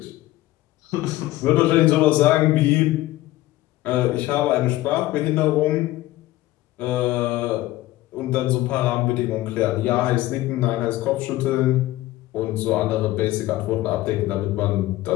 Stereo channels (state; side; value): quieter; right; 16.7 dB